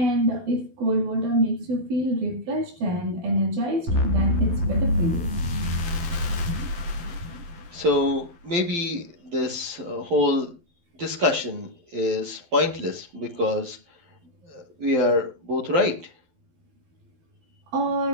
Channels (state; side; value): late; left; 12 ms